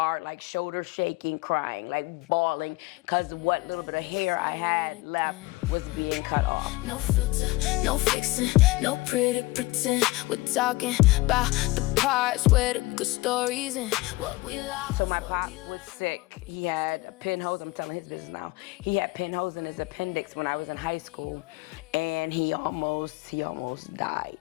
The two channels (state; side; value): quieter; right; 20.8 dB